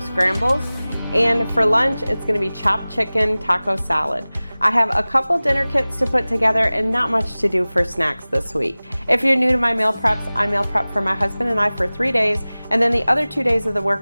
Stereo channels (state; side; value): inverted; both; correlation -0.99